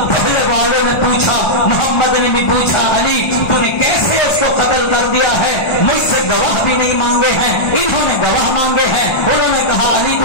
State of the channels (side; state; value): right; late; 1.3 ms